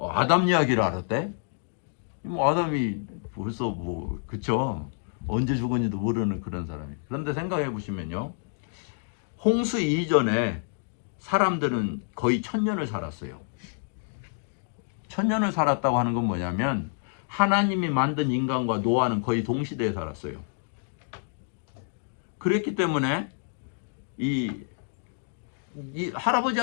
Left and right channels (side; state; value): right; silent; digital silence